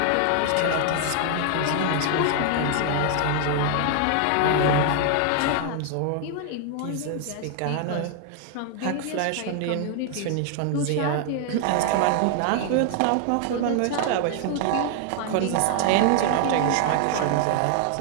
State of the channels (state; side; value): different; both; correlation 0.00